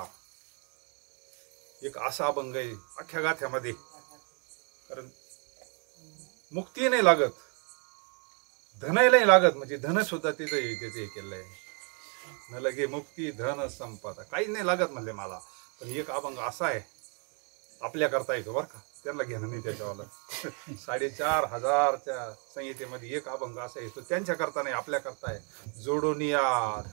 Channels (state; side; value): quieter; left; 38.8 dB